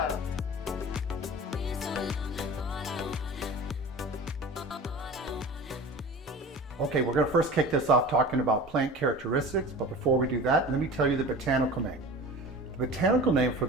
Okay, we're going to first kick this off talking about plant characteristics, but before we do that, let me tell you the botanical name. The botanical name for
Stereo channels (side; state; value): both; normal; correlation 0.36